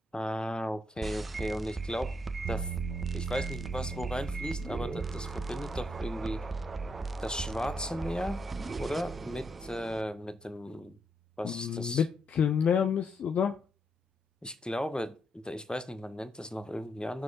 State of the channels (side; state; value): both; normal; correlation 0.78